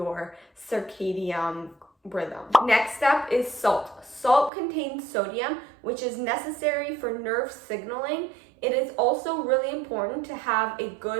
circadian rhythm. Next up is salt. Salt contains sodium, which is necessary for nerve signaling. It is also really important to have a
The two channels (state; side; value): drops out; left; at 4.5 s